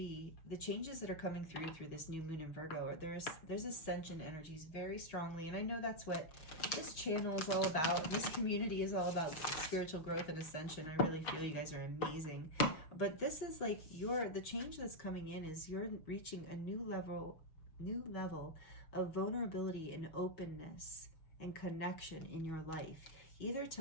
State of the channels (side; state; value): right; late; 6.3 ms